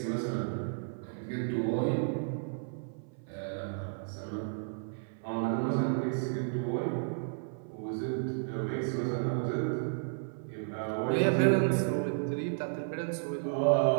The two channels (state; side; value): silent; left; 56 dB below the other